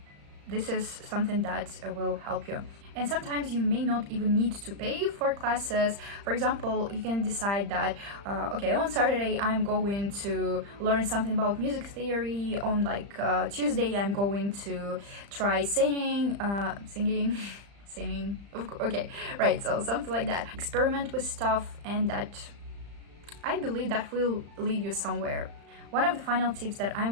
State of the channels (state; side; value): late; left; 35 ms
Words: This is something that will help you. And sometimes you may not even need to pay for classes. For example, you can decide that, okay, on Saturday I'm going to learn something about music theory. On like Tuesday I'm going to try singing. Okay, right, so something like that. Experiment with stuff, and that, I believe, that will lead you somewhere. One of the final tips that I'm